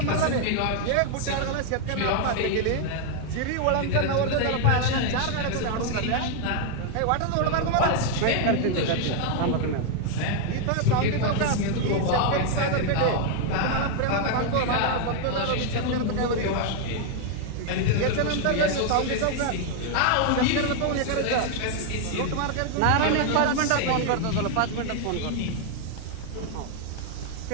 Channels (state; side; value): different; both; correlation 0.00